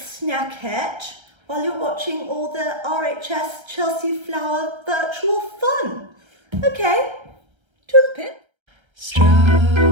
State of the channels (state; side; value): late; left; 1.3 ms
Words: while you're watching all the RHS Chelsea Flower virtual fun. Okay, toodlepip.